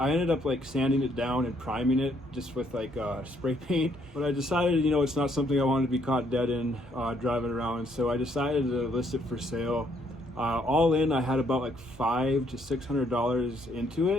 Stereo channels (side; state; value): both; normal; correlation 0.69